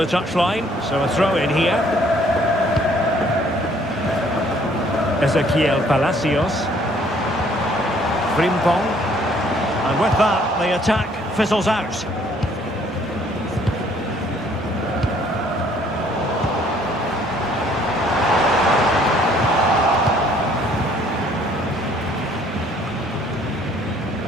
touchline, so a throw in here. Ezequiel Palacios. Frimpong. And with that, the attack fizzles out.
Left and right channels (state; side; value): normal; both; correlation 0.61